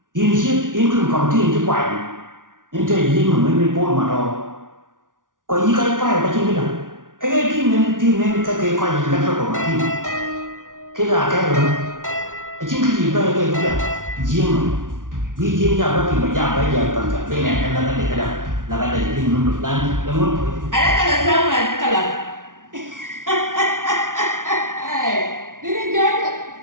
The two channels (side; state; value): left; late; 0.88 ms